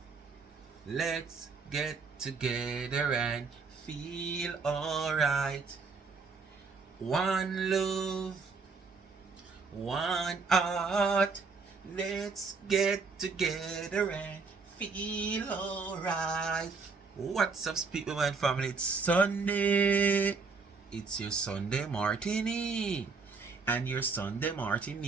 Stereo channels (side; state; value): left; quieter; 4.7 dB